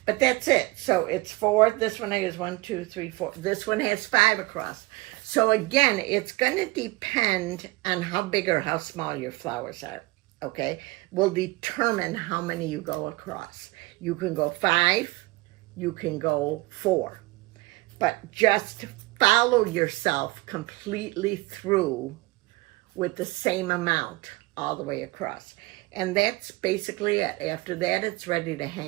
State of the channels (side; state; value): left; quieter; 22.3 dB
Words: but that's it. So it's 4. This one has 1, 2, 3, 4. This one has 5 across. So again, it's going to depend on how big or how small your flowers are. Okay, will determine how many you go across. You can go 5, you can go 4, but just follow yourself completely through with the same amount all the way across. And that's basically it. After that, it's ready to